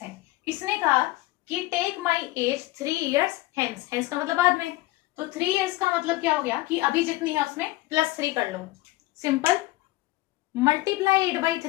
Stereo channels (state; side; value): quieter; right; 18.8 dB